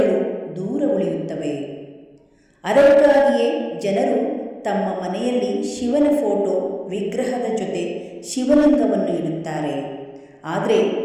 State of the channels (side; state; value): both; identical; correlation 1.00